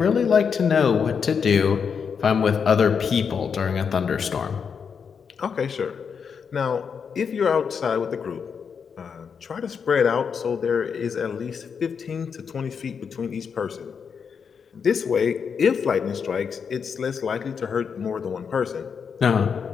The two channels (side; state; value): right; quieter; 6.4 dB